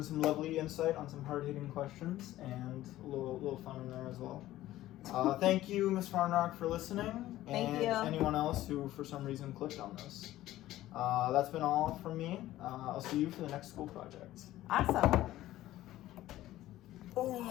some lovely insight on some hard-hitting questions, and a little fun in there as well. Thank you, Ms. Farnrock, for listening. Thank you. And anyone else who for some reason clicked on this. That's been all from me. I'll see you for the next school project. Awesome. Oh,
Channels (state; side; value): quieter; right; 14.9 dB